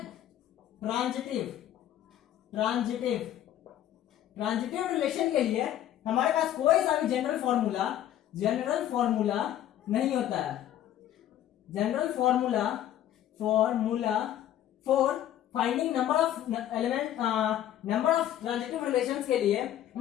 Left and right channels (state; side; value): quieter; right; 11.9 dB